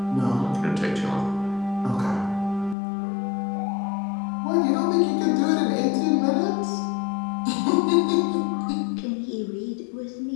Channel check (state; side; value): drops out; right; at 2.8 s